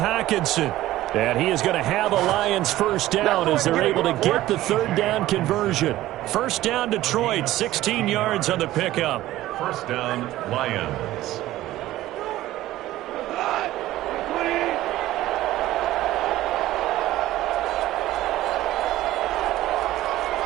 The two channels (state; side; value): quieter; left; 15.4 dB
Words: And he is going to have a Lions first down as they're able to get the 3rd down conversion. First down, Detroit, 16 yards on the pickup. First down, Lions.